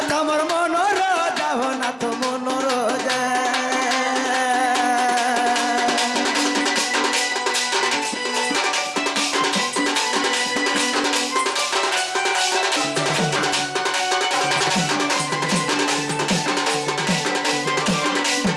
তোমার মনোর যাও না তো মনোর যা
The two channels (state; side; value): identical; both; correlation 1.00